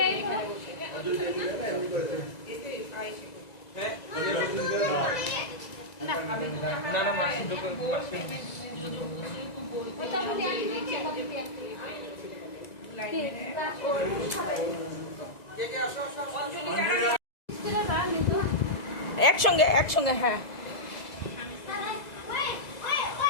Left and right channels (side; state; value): right; late; 1.9 ms